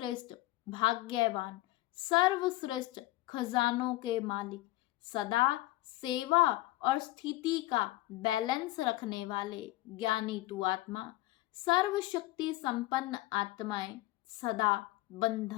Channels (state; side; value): quieter; right; 18.1 dB